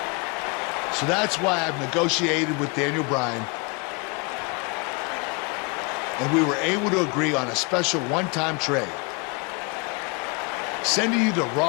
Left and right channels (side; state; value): right; quieter; 30.7 dB